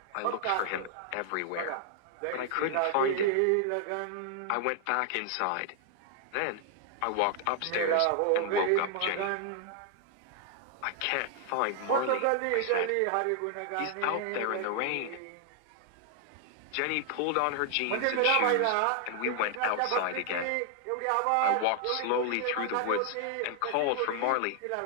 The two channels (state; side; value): different; both; correlation 0.00